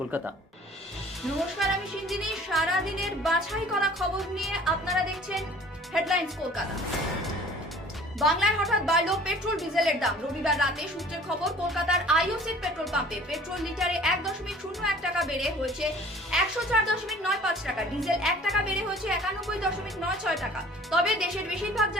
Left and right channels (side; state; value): both; normal; correlation 0.49